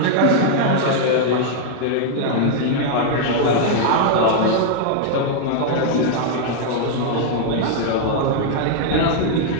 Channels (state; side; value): different; both; correlation 0.00